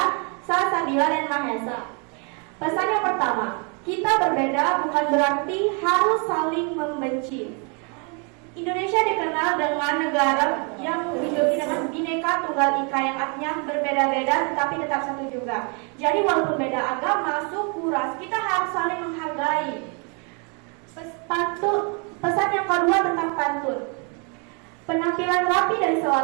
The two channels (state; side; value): quieter; left; 35.4 dB